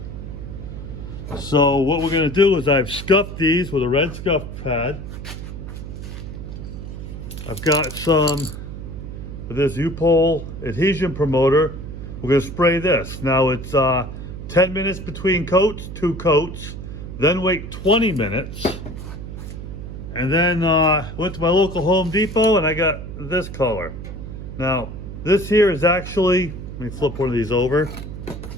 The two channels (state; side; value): noise; right; hum, 9 dB below the sound